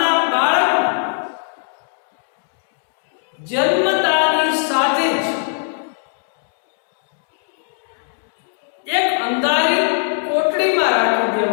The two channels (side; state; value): right; silent; digital silence